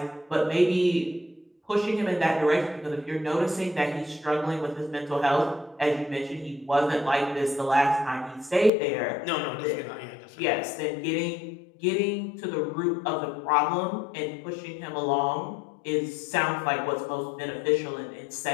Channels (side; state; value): right; drops out; at 8.7 s